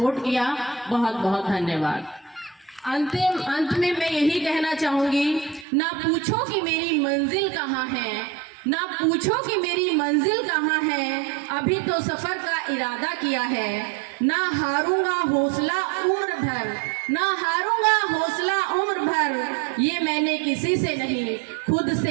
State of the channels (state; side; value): drops out; left; at 5.7 s